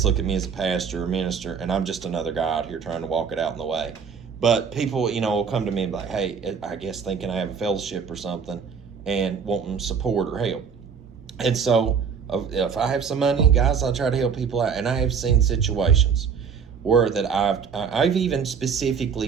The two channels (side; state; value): left; quieter; 6.5 dB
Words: look at me as a pastor or minister, and I'm just another guy out here trying to walk it out in the way. But people, will come to me and be like, hey, I guess thinking I have a fellowship or something and wanting support or help. And so if I have some money, guys, I try to help people out. And I have seen situations where that I've even